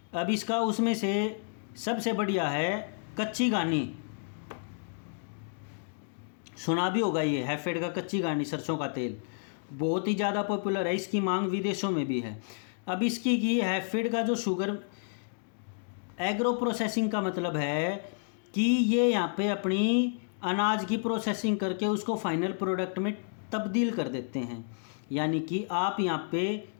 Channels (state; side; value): silent; right; digital silence